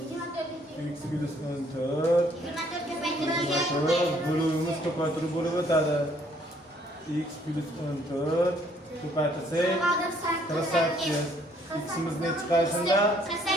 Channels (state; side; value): normal; both; correlation 0.64